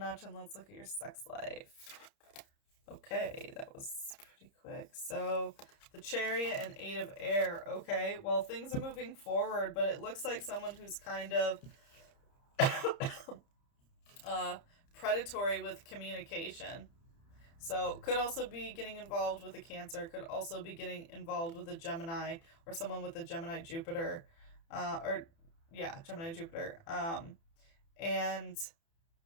and let's look at your sex life. Okay, that was pretty quick. So, the Chariot and 8 of air. Okay, well, things are moving forward, but it looks like someone who's kind of predatory with communication. So, could also be getting involved with a Cancer, could also be getting involved with a Gemini, or someone with a Gemini Jupiter. Gemini Jupiter. And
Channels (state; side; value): late; right; 30 ms